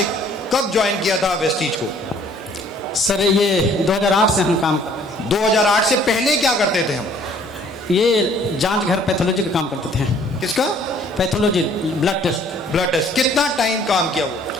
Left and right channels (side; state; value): both; normal; correlation 0.58